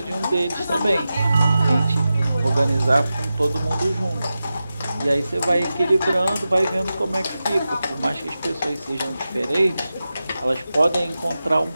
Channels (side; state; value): both; inverted; correlation -0.93